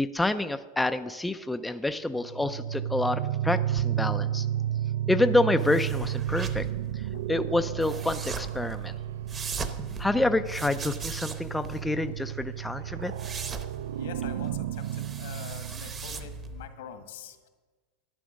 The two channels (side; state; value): both; normal; correlation 0.51